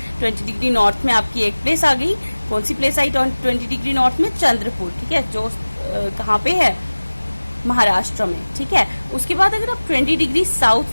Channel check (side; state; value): both; inverted; correlation -1.00